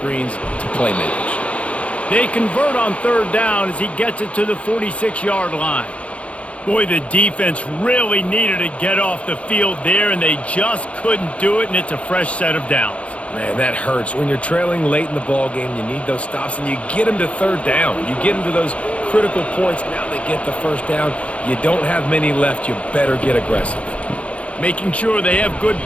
to playmakers. They convert on third down as he gets it to the 46-yard line. Boy, the defense really needed to get off the field there, and they just couldn't do it, and it's a fresh set of downs. Man, that hurts. When you're trailing late in the ball game, you need those stops, and you get them to third down. You get them to those critical points. Now they get the first down. You don't have many left. You better get aggressive. Making sure they have good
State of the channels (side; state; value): right; late; 0.063 ms